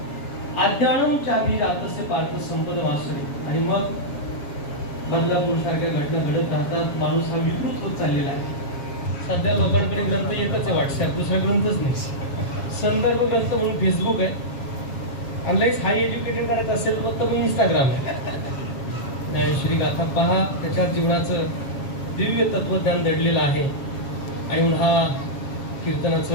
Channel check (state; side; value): late; right; 7.2 ms